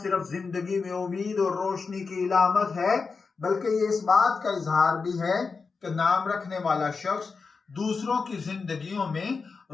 जिंदगी में उम्मीद और रोशनी की इलामत है बल्कि ये इस बात का इजहार भी है कि नाम रखने वाला शख्स दूसरों की जिंदगियों में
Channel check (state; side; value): quieter; right; 4.7 dB